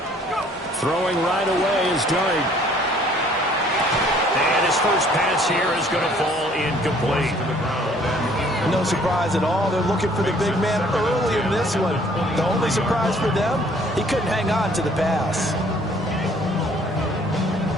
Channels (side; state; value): both; normal; correlation 0.58